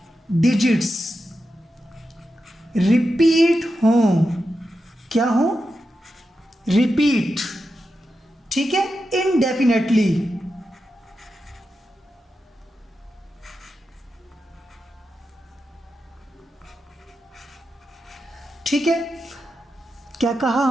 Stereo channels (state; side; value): normal; both; correlation 0.89